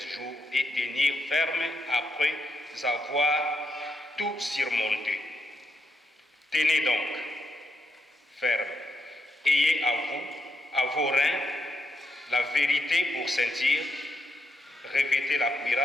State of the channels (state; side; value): normal; both; correlation 0.81